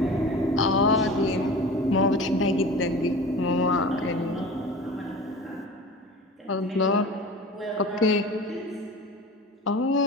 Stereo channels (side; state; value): both; normal; correlation 0.36